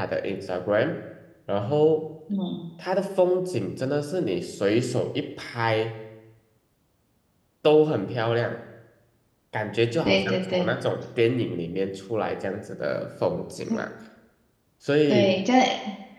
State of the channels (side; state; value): both; identical; correlation 1.00